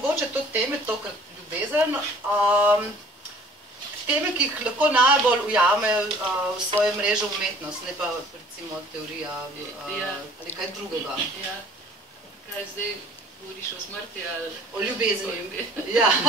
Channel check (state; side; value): normal; both; correlation 0.51